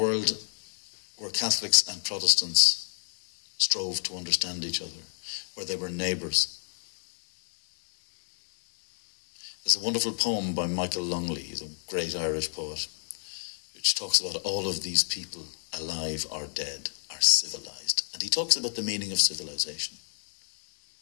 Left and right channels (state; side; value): silent; right; digital silence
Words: where Catholics and Protestants strove to understand each other, where they were neighbours. There's a wonderful poem by Michael Longley, he's a great Irish poet, which talks about all of these people, alive or dead, are civilized. And he talks about the meaning of civilization.